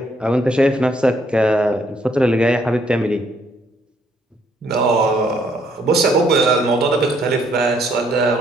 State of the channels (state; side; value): normal; both; correlation 0.68